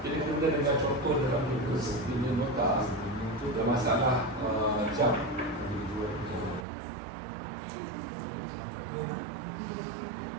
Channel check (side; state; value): left; drops out; at 6.7 s